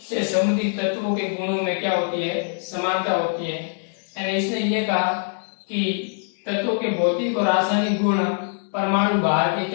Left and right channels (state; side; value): silent; right; 63 dB below the other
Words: से संबंधित तत्वों के गुणों में क्या होती है, समानता होती है। यानी इसने ये कहा कि तत्वों के भौतिक और रासायनिक गुण परमाणु भार के